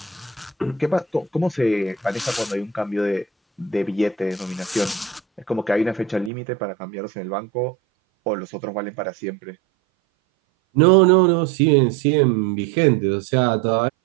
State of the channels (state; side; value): drops out; left; at 6.3 s